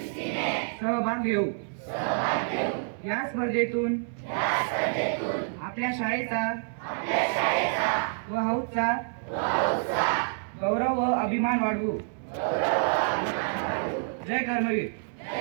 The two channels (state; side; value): silent; left; digital silence